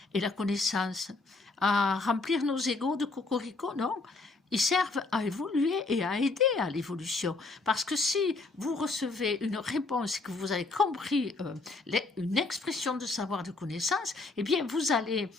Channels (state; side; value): quieter; right; 3.5 dB